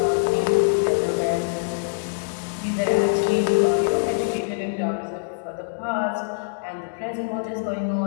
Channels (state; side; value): silent; right; digital silence